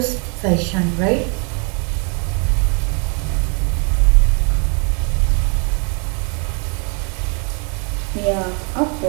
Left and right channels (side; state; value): left; quieter; 36.7 dB